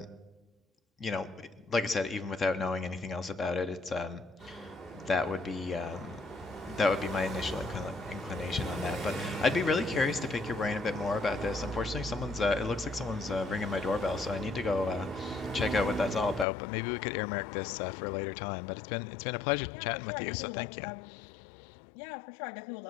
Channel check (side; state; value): right; drops out; at 16.4 s